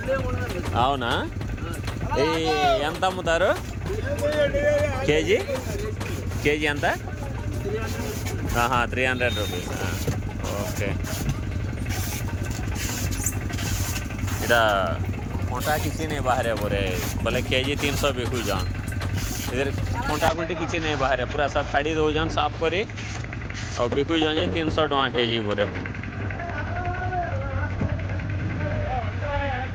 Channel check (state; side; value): identical; both; correlation 1.00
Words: అవునా? ఈ ఎంత అమ్ముతారు కేజీ? కేజీ ఎంత? 300 रुपीस. ओके. इधर कोंटा किसी नहीं बाहर है बोले बोले केजी 300 बिकू जान. इधर कोंटा कोंटे किसी नहीं बाहर है पूरा सब खरीद हो जान साफ करी और बिकू जाए 300 टका केजी बोले.